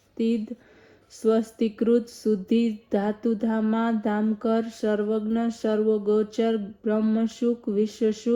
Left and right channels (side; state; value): both; identical; correlation 1.00